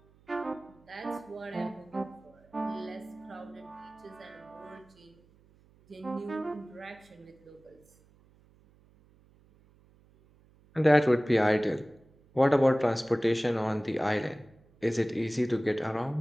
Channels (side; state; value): right; noise; hum, 29 dB below the sound